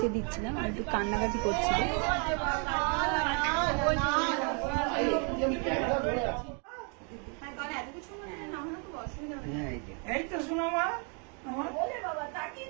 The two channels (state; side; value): quieter; left; 37.6 dB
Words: দিচ্ছিলাম আর একটু কান্নাকাটি করছিল। এই তো শোনো মা,